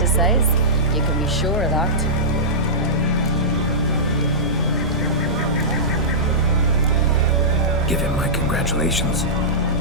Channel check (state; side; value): normal; both; correlation -0.16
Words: size. You can be sure of that. Give him my congratulations.